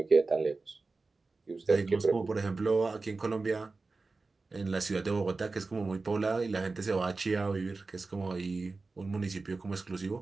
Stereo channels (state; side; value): quieter; left; 3.8 dB